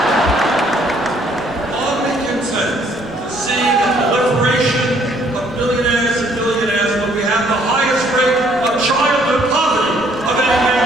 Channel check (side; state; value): right; noise; rumble, 22 dB below the sound